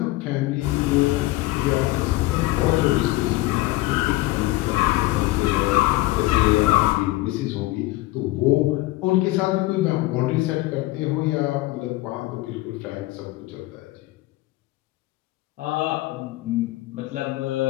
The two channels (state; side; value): quieter; right; 19.0 dB